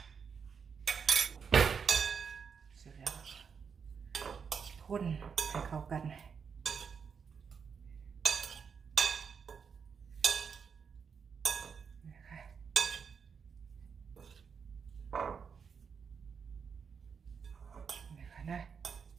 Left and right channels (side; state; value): left; quieter; 6.3 dB